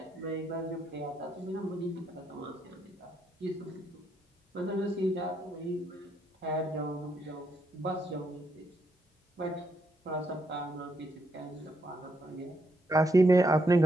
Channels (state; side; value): normal; both; correlation 0.77